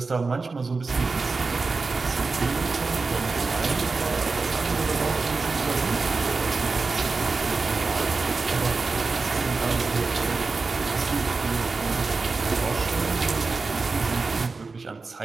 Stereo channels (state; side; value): quieter; left; 4.1 dB